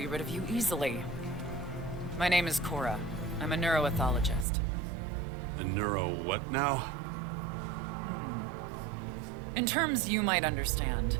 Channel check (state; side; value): drops out; left; at 4.5 s